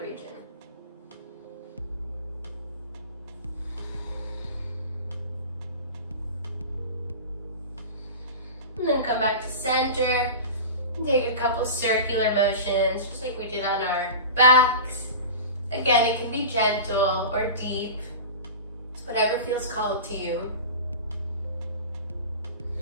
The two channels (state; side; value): inverted; both; correlation -0.32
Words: region. And then come back to center. And take a couple circular motions, just like we did on our backs. Again, it can be gentle or deep. It's whatever feels called to you.